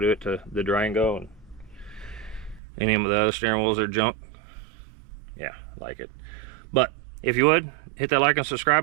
it to the Durango and any of the other steering wheels are junk. Yeah, like it. But if you would, hit that like and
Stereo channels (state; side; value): drops out; left; at 2.6 s